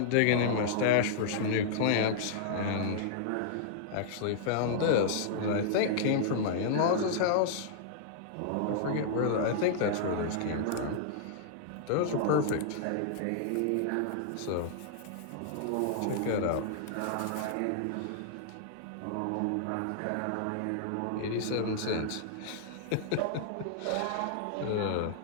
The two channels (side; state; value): both; different; correlation -0.01